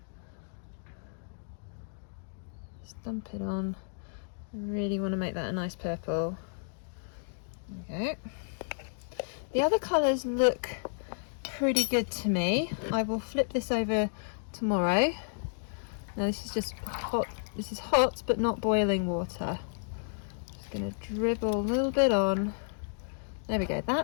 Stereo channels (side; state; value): right; silent; digital silence